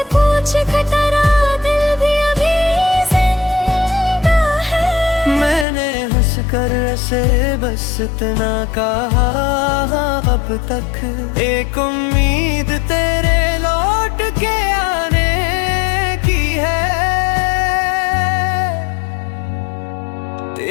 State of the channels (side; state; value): right; drops out; at 5.7 s